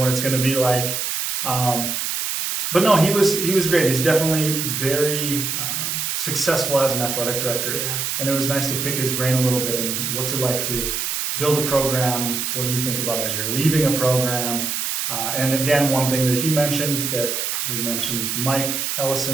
it's going to be like. But no, he was great. He's definitely very successful as an athletic director, and it was nice to pick his brain a little bit. And what's it like to build a program? What do you think about as you're leaving a program? And again, one thing that he mentioned that we mentioned, Mike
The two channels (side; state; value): right; noise; hiss, 1 dB below the sound